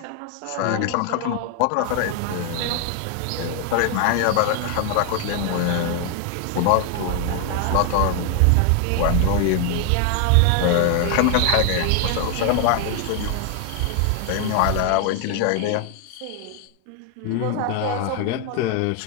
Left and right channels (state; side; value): different; both; correlation 0.00